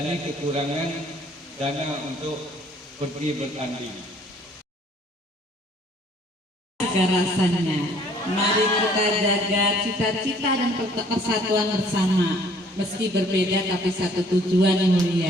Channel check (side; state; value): both; normal; correlation 0.58